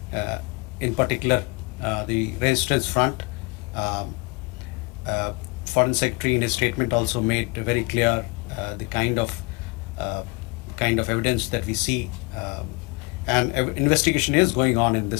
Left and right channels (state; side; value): quieter; right; 28.5 dB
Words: in particular the Resistance Front. Foreign Secretary in his statement also made very clear the kind of evidence that we see, and investigation is going on in